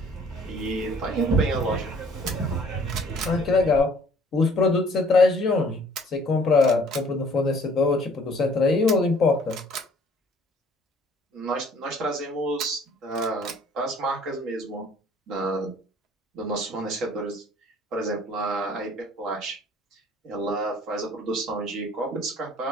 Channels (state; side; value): normal; both; correlation 0.56